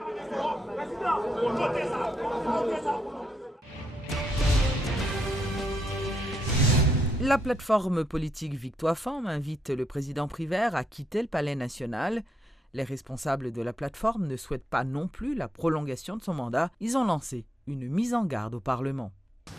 La plateforme politique Victoire Femmes invite le président Privert à quitter le Palais national. Les responsables de la plateforme ne souhaitent pas non plus la prolongation de son mandat. Ils ont lancé une mise en garde au Parlement.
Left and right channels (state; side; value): normal; both; correlation 0.78